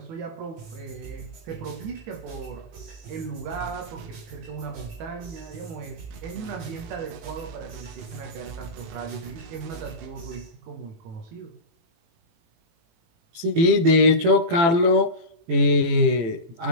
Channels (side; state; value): left; late; 18 ms